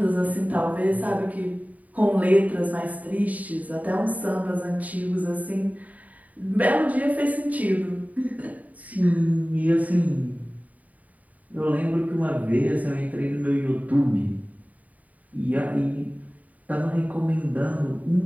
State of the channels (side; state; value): left; late; 0.072 ms